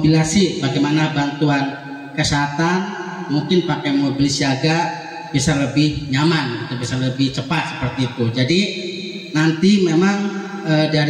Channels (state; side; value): identical; both; correlation 1.00